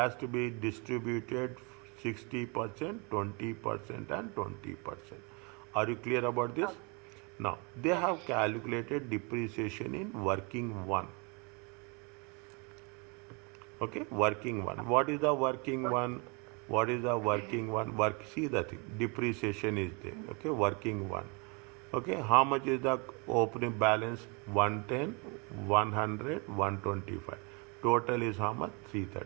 to be distributed 60%, 20% and 20%. Are you clear about this? Now, they have calculated depreciation in working one. Okay, working one. What is the working one? See the thing. Depreciation is there. Okay, working one. Okay, how much is the opening balance? 110, 100, 125. Total is how much?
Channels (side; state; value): left; quieter; 31.8 dB